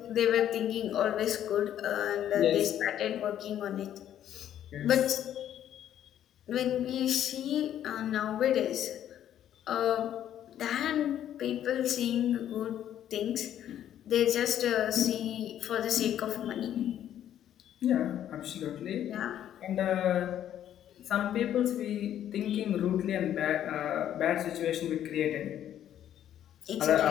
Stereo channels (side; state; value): right; quieter; 10.9 dB